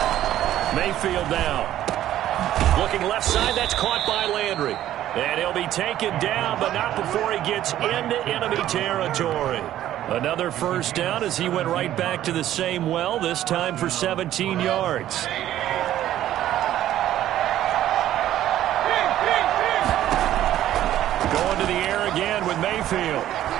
Mayfield now. Looking left side, that's caught by Landry. And he'll be taken down, but not before he gets into enemy territory. Another first down as he went right back to the same well, this time for 17 yards. Going to the air again with Mayfield.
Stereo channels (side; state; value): left; quieter; 12.6 dB